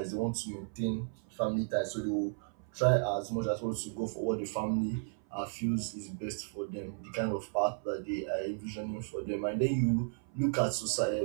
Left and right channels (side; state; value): left; silent; 55 dB below the other